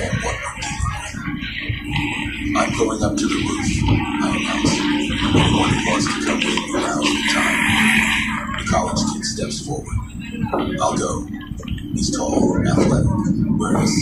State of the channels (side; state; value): both; identical; correlation 1.00